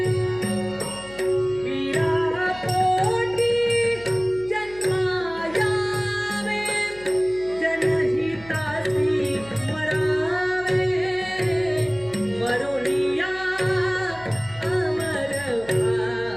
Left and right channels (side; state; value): left; noise; hum, 20 dB below the sound